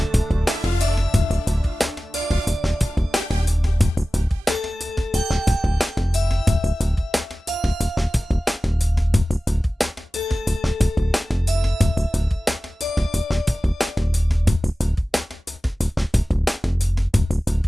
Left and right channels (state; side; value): normal; both; correlation 0.96